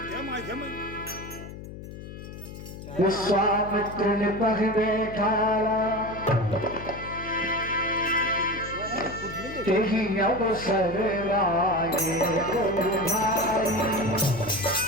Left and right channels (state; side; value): noise; left; hum, 12 dB below the sound